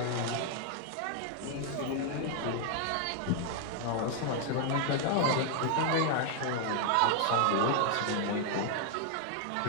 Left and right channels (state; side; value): different; both; correlation 0.00